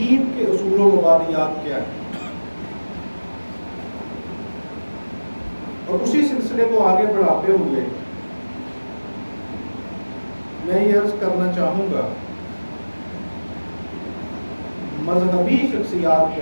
کے اصول و مبادیات کیا ہیں، اور اسی سلسلے کو آگے بڑھاتے ہوئے میں یہ عرض کرنا چاہوں گا مذہبی شخصیات کے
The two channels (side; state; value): both; inverted; correlation -1.00